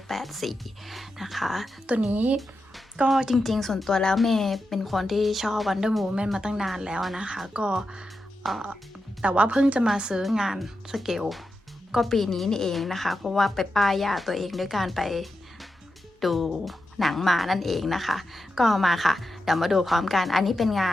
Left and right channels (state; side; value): normal; both; correlation 0.89